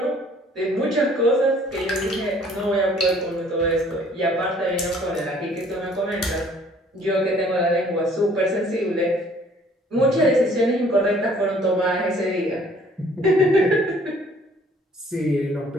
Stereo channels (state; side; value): normal; both; correlation 0.57